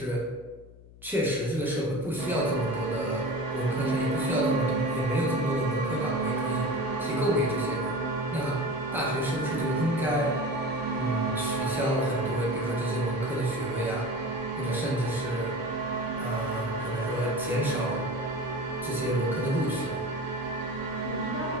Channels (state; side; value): noise; left; hum, 21 dB below the sound